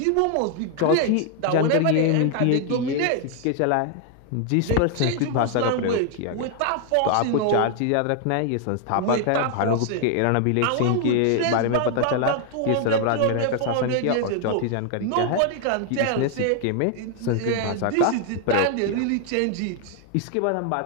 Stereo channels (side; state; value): both; different; correlation 0.00